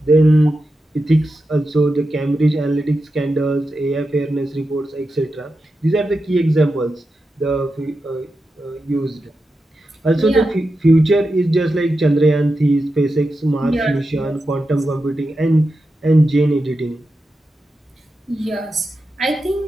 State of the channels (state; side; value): normal; both; correlation 0.90